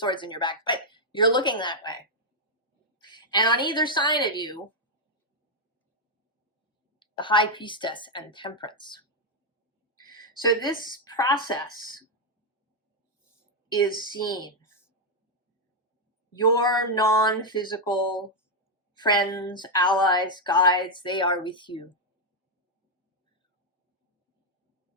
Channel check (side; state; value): both; normal; correlation 0.00